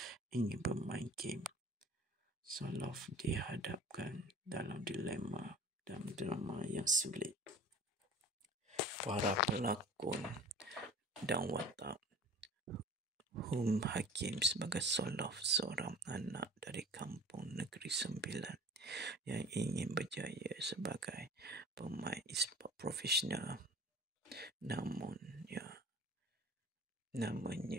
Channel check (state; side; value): normal; both; correlation 0.43